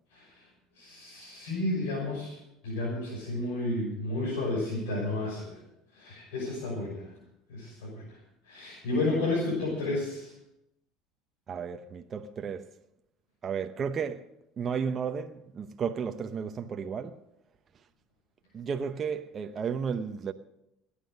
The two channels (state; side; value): normal; both; correlation 0.35